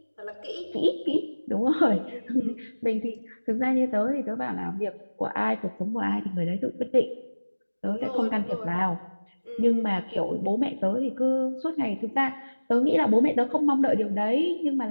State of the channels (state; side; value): inverted; both; correlation -1.00